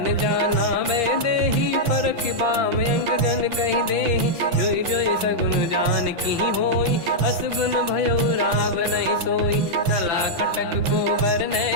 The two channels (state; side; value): late; left; 5.9 ms